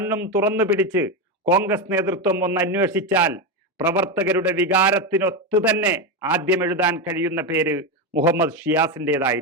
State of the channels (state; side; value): normal; both; correlation 0.12